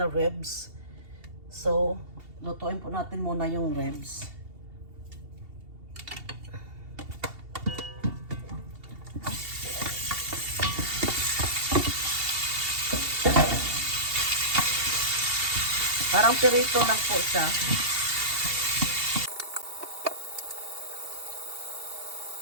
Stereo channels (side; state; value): left; late; 2.7 ms